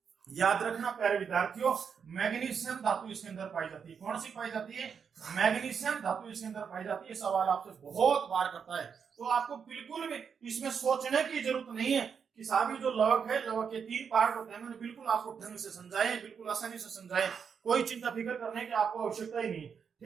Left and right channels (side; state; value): left; quieter; 6.7 dB